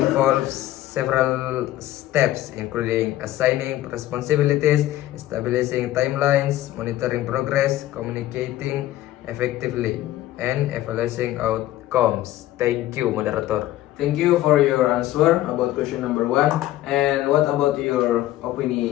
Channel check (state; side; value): quieter; right; 14.7 dB